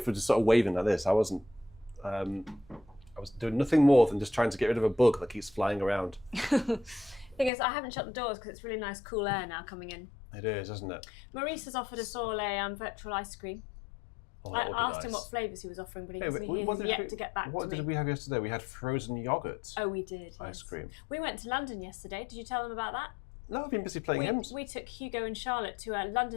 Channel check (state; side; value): drops out; right; at 7.5 s